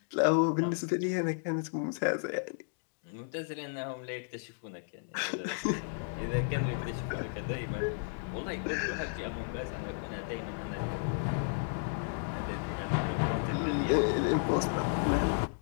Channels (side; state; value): right; silent; digital silence